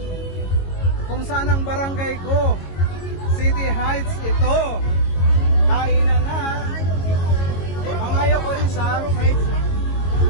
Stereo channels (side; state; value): right; late; 22 ms